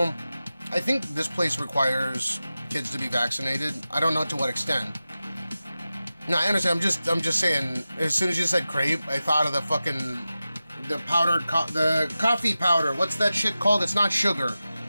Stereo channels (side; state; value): both; inverted; correlation -0.94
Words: I think this place requires kids to be vaccinated. I don't know to what extent. No, I understand. I'm just saying. As soon as you said crepe, I thought of the powdered the coffee powder. What's that shit called? It's not sugar.